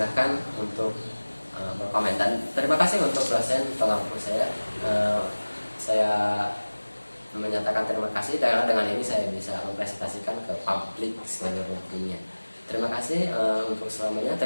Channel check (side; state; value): both; inverted; correlation -1.00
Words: untuk berkomentar. Terima kasih untuk dosen pengampu saya. Saya menyatakan terima kasih karena dengan ini saya bisa mempresentasikan ke publik seluruh dunia. Terima kasih untuk selamanya.